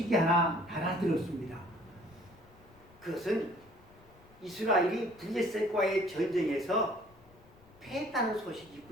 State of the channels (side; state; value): left; noise; rumble, 26 dB below the sound